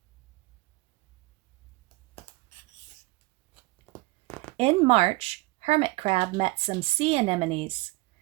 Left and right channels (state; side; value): quieter; left; 22.8 dB